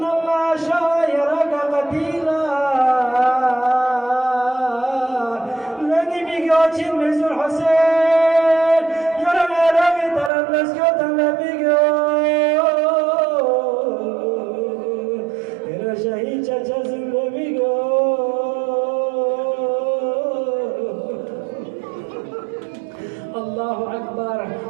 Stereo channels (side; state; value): left; drops out; at 10.3 s